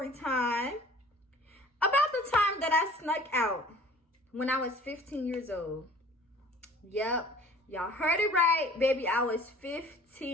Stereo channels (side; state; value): both; normal; correlation 0.49